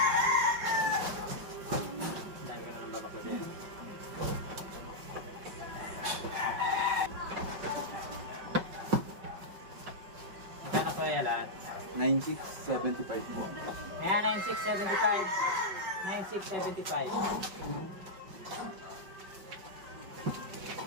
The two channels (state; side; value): late; left; 5.3 ms